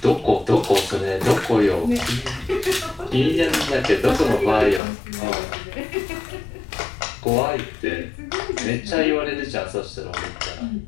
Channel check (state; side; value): drops out; right; at 4.8 s